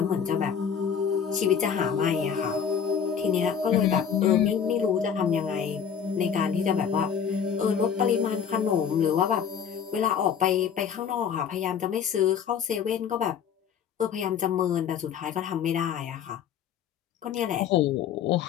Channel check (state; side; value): quieter; right; 7.7 dB